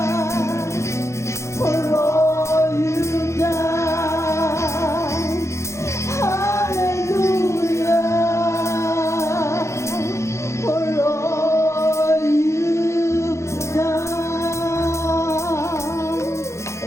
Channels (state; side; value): late; right; 0.14 ms